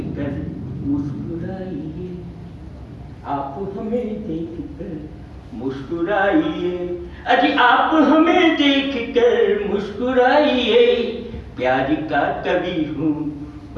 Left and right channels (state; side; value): identical; both; correlation 1.00